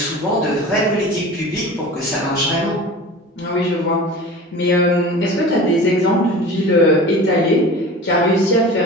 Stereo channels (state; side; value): normal; both; correlation 0.36